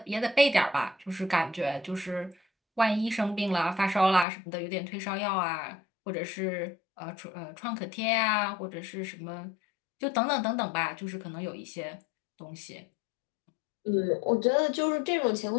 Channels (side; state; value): right; drops out; at 4.2 s